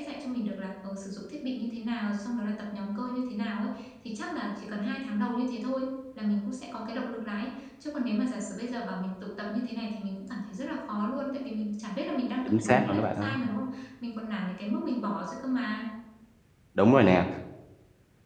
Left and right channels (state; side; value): identical; both; correlation 1.00